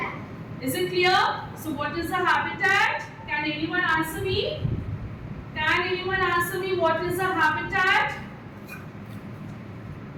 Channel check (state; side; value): identical; both; correlation 1.00